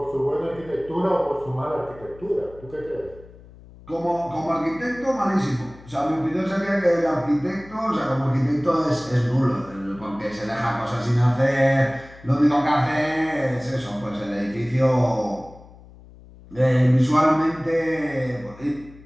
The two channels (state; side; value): noise; left; hum, 21 dB below the sound